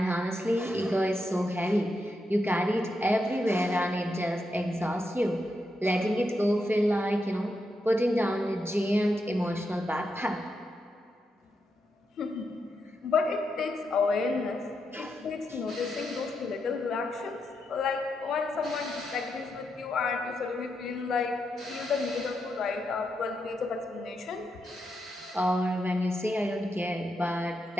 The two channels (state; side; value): normal; both; correlation 0.84